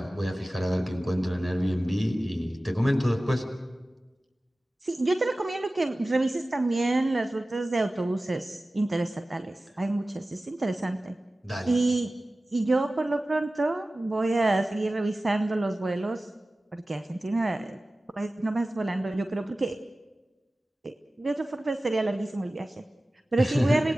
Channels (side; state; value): both; normal; correlation 0.97